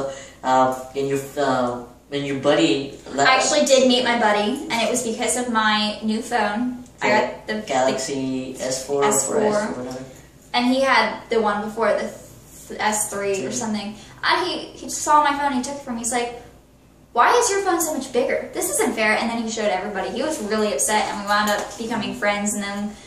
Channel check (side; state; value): both; identical; correlation 1.00